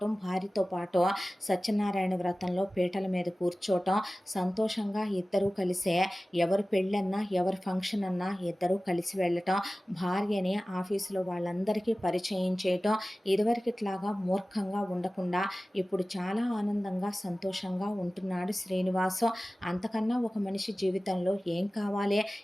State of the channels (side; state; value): both; normal; correlation 0.97